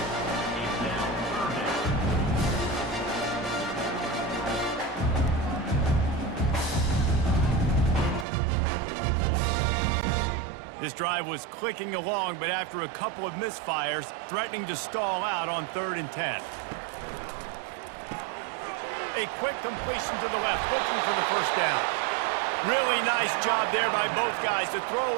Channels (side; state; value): left; drops out; at 8.2 s